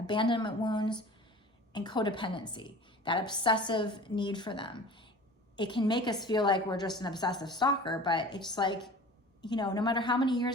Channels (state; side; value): normal; both; correlation 0.41